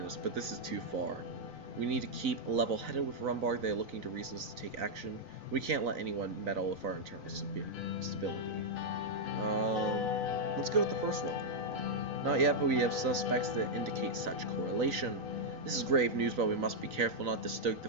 us, but this is too far. We need to keep level-headed with Rumberg. They are looking to reasons to take action. We can't let anyone meddle with our internal stability. Let's go with the first one. Not yet, but we have suspects that indicate such correlation. This is grave news, but we must be careful not to stoke the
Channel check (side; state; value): left; late; 3.9 ms